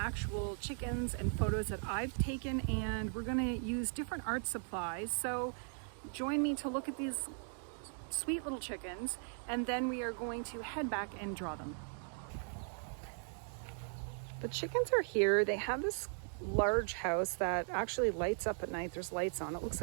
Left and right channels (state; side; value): silent; left; 52 dB below the other